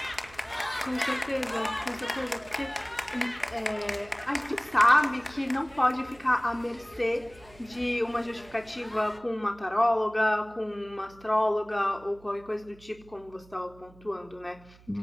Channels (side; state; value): right; noise; hum, 24 dB below the sound